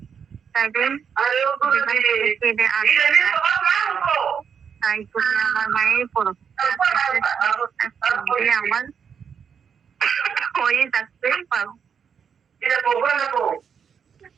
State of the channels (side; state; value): left; quieter; 7.1 dB